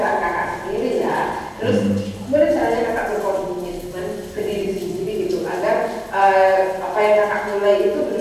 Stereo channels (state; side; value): identical; both; correlation 1.00